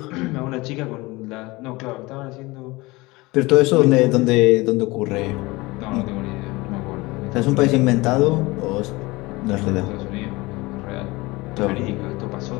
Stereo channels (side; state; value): right; quieter; 22.3 dB